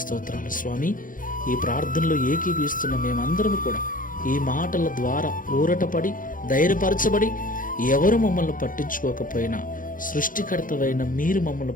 స్తోత్రాలు స్వామి. ఈ ప్రార్థనలో ఏకీభవిస్తున్న మేమందరం కూడా ఈ మాటల ద్వారా ఊరటపడి, ధైర్యపరచబడి, ఎవరు మమ్మల్ని పట్టించుకోకపోయినా సృష్టికర్తవైన మీరు మమ్మల్ని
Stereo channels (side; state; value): right; late; 0.39 ms